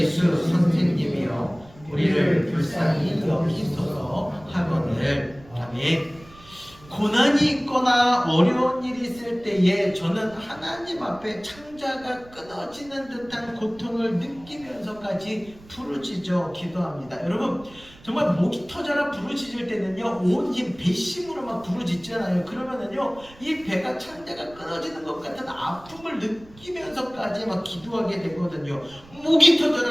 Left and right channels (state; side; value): noise; right; rumble, 23 dB below the sound